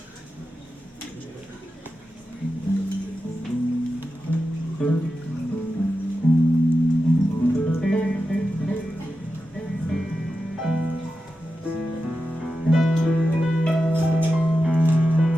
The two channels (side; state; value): both; normal; correlation 0.91